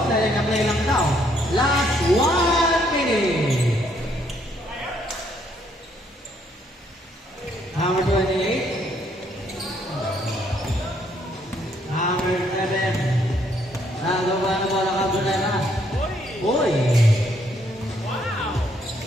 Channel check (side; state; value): both; normal; correlation 0.70